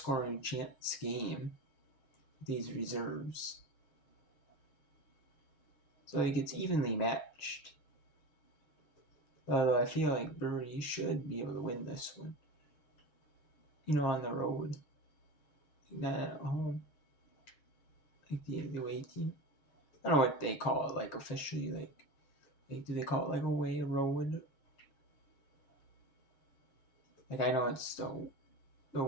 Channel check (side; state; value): right; late; 6.4 ms